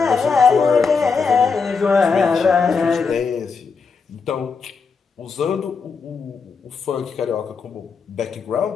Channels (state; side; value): quieter; right; 5.1 dB